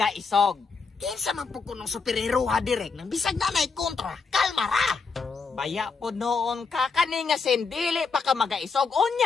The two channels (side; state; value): right; quieter; 4.8 dB